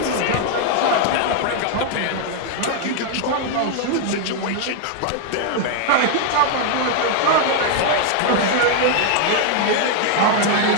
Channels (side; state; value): both; different; correlation 0.00